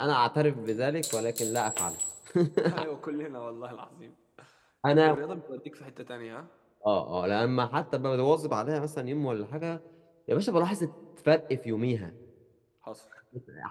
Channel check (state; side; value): identical; both; correlation 1.00